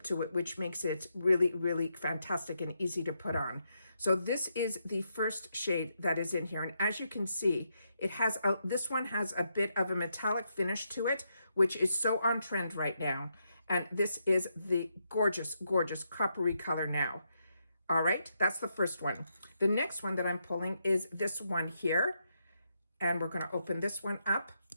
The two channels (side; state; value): both; inverted; correlation -0.81